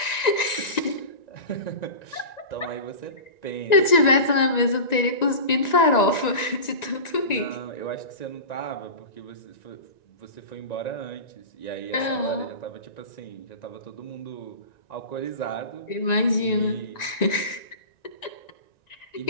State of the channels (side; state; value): right; late; 1.9 ms